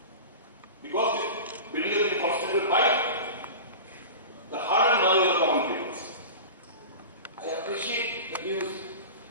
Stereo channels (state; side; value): inverted; both; correlation -0.31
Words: Because this building has been constructed by the hard-earned money of the common people. I appreciate the views